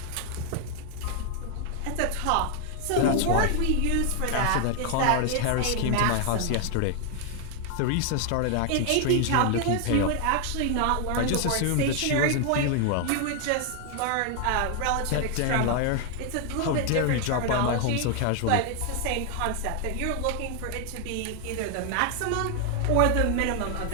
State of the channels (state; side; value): different; both; correlation 0.00